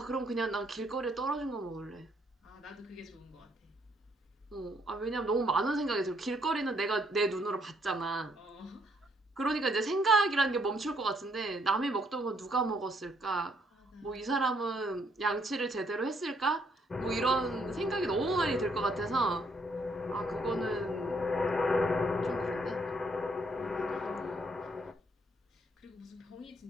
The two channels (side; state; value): both; normal; correlation 0.70